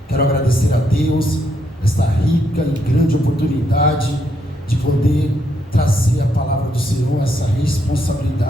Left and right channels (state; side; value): normal; both; correlation 0.76